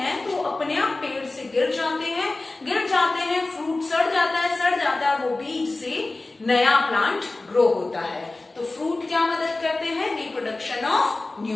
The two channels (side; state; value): right; quieter; 3.1 dB